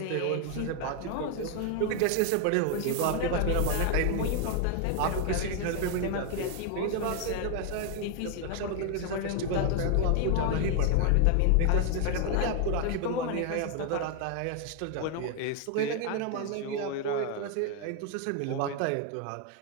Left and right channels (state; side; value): different; both; correlation 0.01